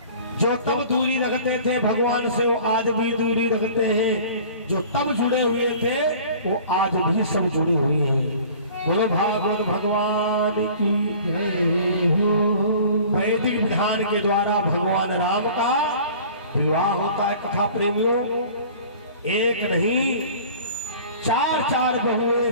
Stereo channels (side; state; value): both; inverted; correlation -0.46